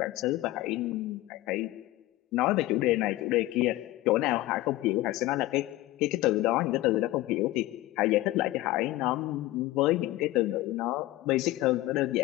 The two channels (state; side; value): quieter; right; 17.4 dB